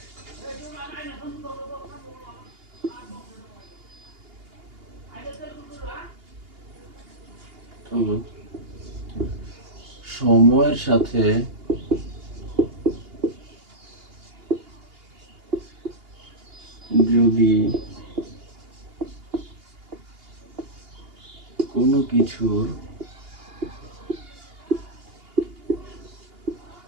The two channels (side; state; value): left; late; 2.8 ms